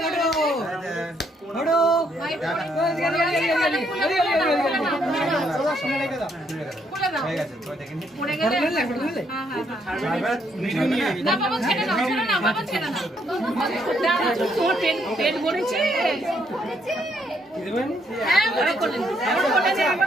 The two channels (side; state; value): both; normal; correlation 0.72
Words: পড়ে গেলে না বাবা ছেড়ে দাও, ছেড়ে না বাবা, ছেড়ে না। তোমার পেট ভরেছে? হ্যাঁ ওরা কোলে নে, ওরা কোলে নে,